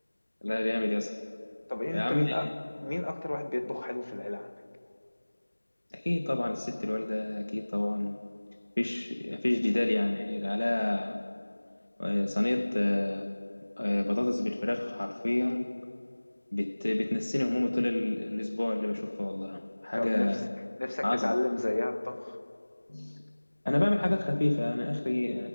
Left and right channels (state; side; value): inverted; both; correlation -1.00